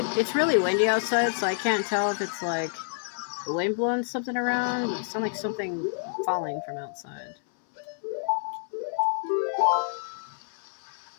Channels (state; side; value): silent; right; 59 dB below the other